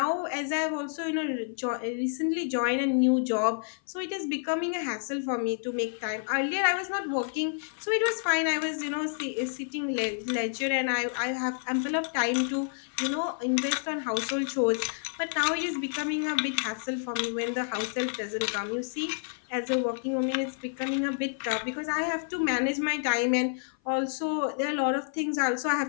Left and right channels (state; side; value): silent; right; 56 dB below the other